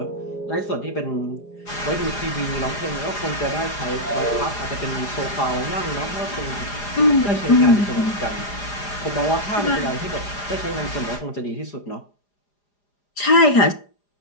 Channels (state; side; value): late; right; 4.9 ms